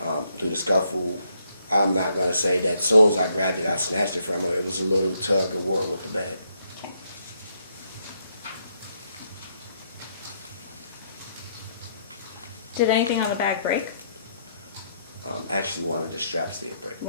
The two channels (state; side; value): inverted; both; correlation -0.74